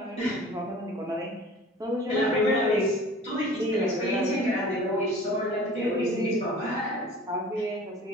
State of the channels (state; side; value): normal; both; correlation 0.43